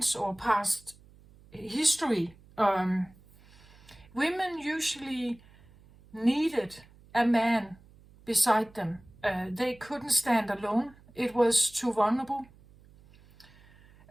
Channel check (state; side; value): noise; right; hum, 26 dB below the sound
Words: or past history, women usually needed a man beside them. They couldn't stand alone. It was too vulnerable.